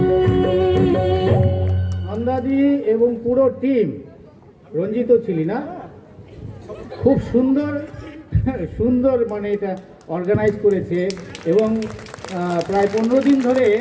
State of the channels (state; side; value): identical; both; correlation 1.00